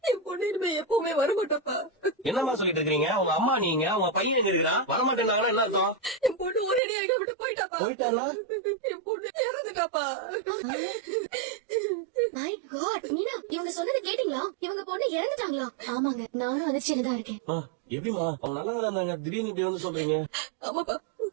என் பொண்ணு இனிமே எப்பவுமே வரமாட்டப்பா. என்னம்மா சொல்லிட்டு இருக்கீங்க? உங்க அம்மா நீங்க, உங்க பையன் எங்க இருக்கிறான்? வரமாட்டேன்னாங்கன்னா என்ன அர்த்தம்? என் பொண்ணு ஒரேடி எங்க விட்டு போயிட்டாப்பா. போயிட்டாரா? என் பொண்ணு இறந்துட்டாப்பா. மை காட் மீனா, இவங்க சொன்னது கேட்டீங்களா? இவங்க பொண்ணு இறந்துட்டாங்களா? ஆமாங்க, நானும் அதிர்ச்சியில தான் இருக்கேன். எப்படிமா அவங்க நல்லா இருந்தாங்க, திடீர்னு இப்படி வந்து சொல்றீங்க? ஆமாப்பா,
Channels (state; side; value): drops out; left; at 6.8 s